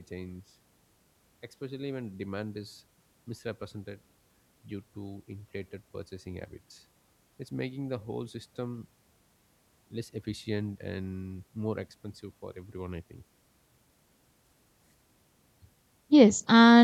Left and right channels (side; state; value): both; identical; correlation 1.00